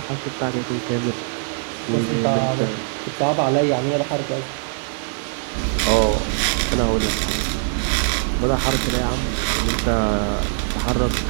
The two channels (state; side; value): silent; left; 63 dB below the other